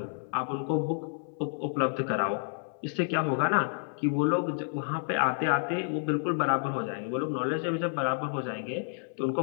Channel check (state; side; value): silent; right; 58 dB below the other